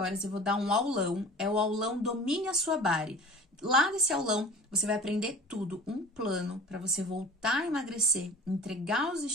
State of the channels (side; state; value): both; normal; correlation 0.42